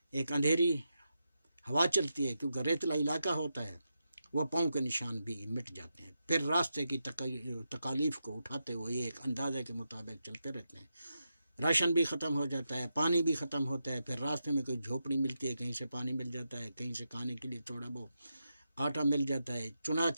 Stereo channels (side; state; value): both; inverted; correlation -0.86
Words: ایک اندھیری ہوا چلتی ہے، کیونکہ ریتلا علاقہ ہوتا ہے، وہ پاؤں کے نشان بھی مٹ جاتے ہیں۔ پھر راستے کی تکالیف کو اٹھاتے ہوئے یہ ایک اندازے کے مطابق چلتے رہتے ہیں۔ راشن بھی ختم ہو جاتا ہے، پانی بھی ختم ہوتا ہے، پھر راستے میں کوئی جھوپڑی ملتی ہے، کہیں سے پانی مل جاتا ہے، کہیں سے کھانے کے لیے تھوڑا بہت آٹا مل جاتا ہے۔